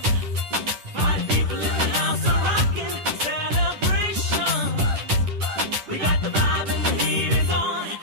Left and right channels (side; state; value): left; late; 10 ms